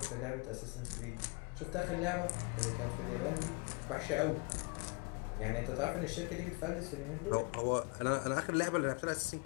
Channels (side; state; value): right; quieter; 29.5 dB